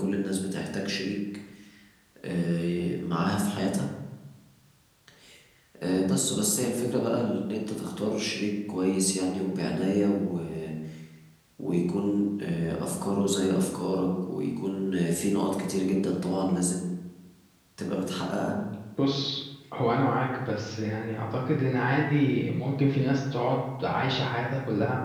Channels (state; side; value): identical; both; correlation 1.00